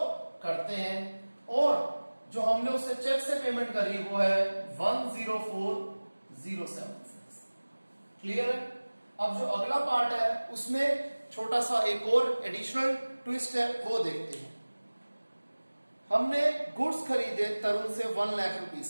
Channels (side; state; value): both; inverted; correlation -1.00